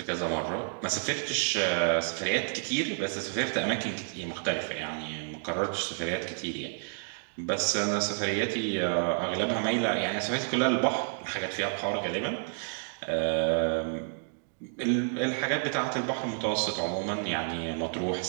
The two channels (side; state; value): left; silent; digital silence